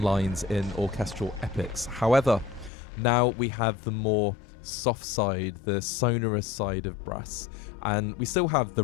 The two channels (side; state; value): right; drops out; at 2.7 s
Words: lines in orchestral epics. However, now we have the more soft side, the sonorous side of brass, and we still have the